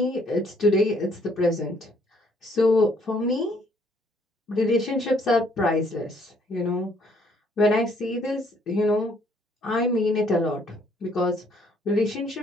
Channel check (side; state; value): both; normal; correlation 0.65